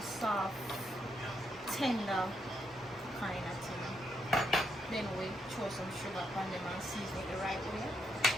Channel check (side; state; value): both; normal; correlation 0.79